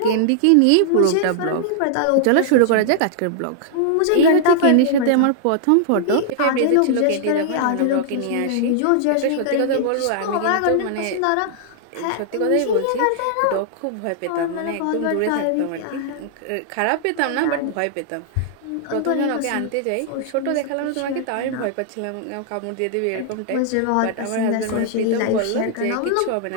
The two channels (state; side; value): different; both; correlation -0.01